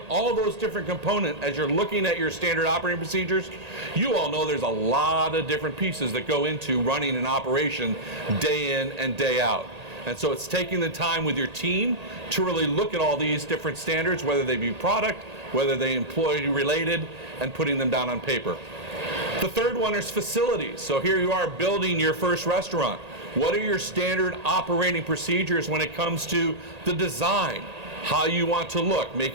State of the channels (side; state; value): left; late; 1.8 ms